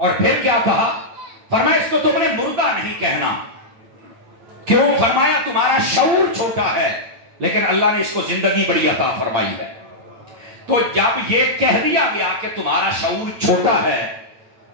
پھر کیا کہا؟ فرمایا اس کو تم نے مردہ نہیں کہنا. کیوں؟ فرمایا تمہارا شعور چھوٹا ہے, لیکن اللہ نے اس کو زندگی بڑی عطا فرمائی ہے. تو جب یہ کہہ دیا گیا کہ تمہارا شعور چھوٹا ہے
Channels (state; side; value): late; left; 8.9 ms